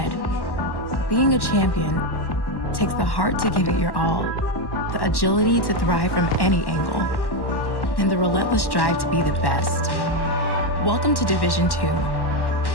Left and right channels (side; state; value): right; late; 1.1 ms